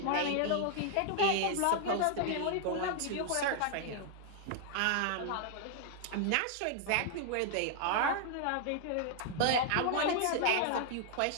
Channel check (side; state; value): both; different; correlation 0.00